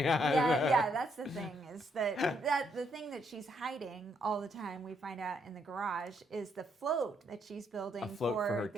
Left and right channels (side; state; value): both; normal; correlation 0.74